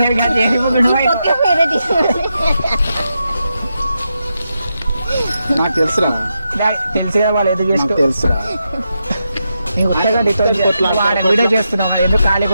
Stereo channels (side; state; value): both; inverted; correlation -0.85